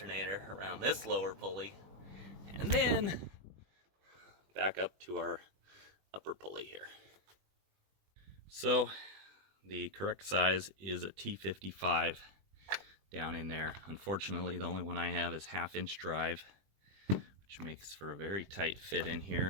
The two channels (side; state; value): left; late; 20 ms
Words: this lower pulley, and then back up to our upper pulley here. So the correct size is a T55 down in there. Unfortunately, the only one I have is 1/2 inch drive, which makes for a very tight fit in